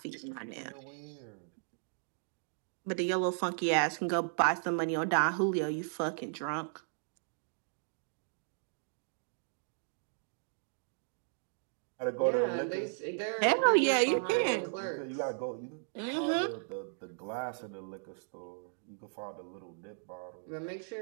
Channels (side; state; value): left; silent; digital silence